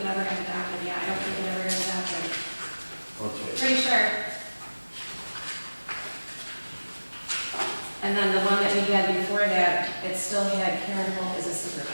it ever got adopted, yeah, I don't think it ever got adopted. Okay. Pretty sure. And then the one that we had before that, it still had Karen Holt as a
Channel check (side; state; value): both; inverted; correlation -1.00